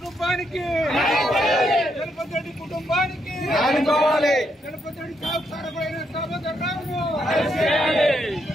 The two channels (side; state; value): both; normal; correlation 0.78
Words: జలపతి రెడ్డి కుటుంబానికి ఆదుకోవాలి. జలపతి రెడ్డి సాగు కారకుడైన దామోదర్ రావును